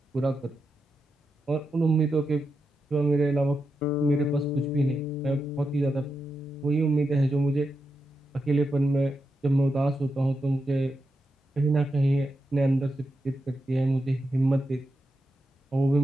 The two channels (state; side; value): normal; both; correlation 0.87